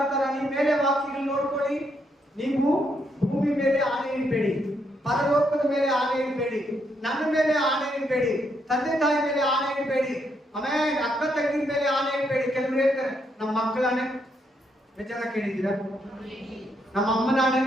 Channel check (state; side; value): normal; both; correlation 0.76